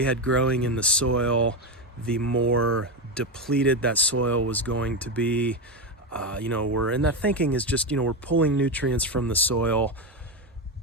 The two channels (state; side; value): normal; both; correlation 0.13